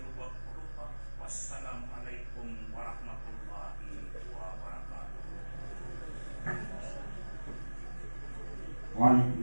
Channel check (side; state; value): both; inverted; correlation -1.00